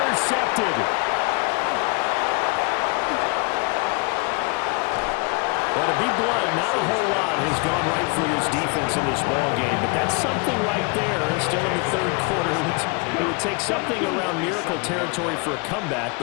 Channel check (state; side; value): quieter; right; 30.8 dB